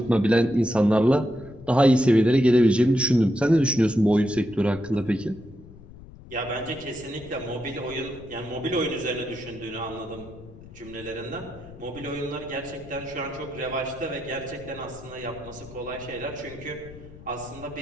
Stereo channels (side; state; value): left; noise; rumble, 18 dB below the sound